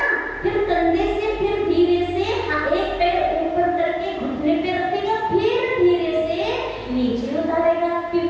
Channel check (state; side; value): identical; both; correlation 1.00